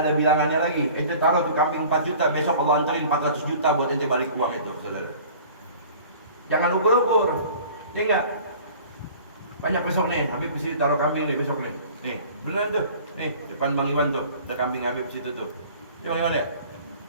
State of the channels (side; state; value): both; inverted; correlation -0.46